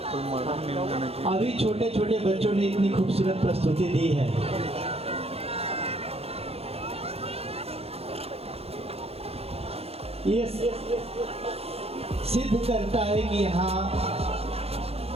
अभी छोटे छोटे बच्चों ने इतनी खूबसूरत प्रस्तुति दी है। ये सिद्ध करता है कि यहाँ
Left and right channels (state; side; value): late; left; 0.29 ms